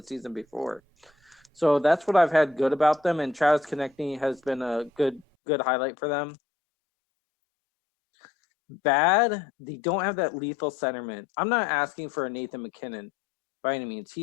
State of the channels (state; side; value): drops out; right; at 5.2 s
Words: season before. So that's what I've had good about them, and Travis Konechny has been a good highlight for them. I would agree. Bad, they don't have that lethal centerman. I'm not asking for a Nathan McKinnon by any means.